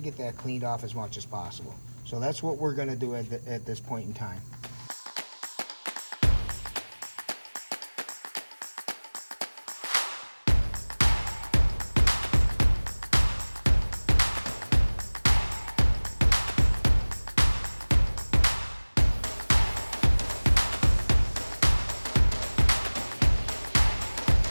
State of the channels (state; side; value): inverted; both; correlation -1.00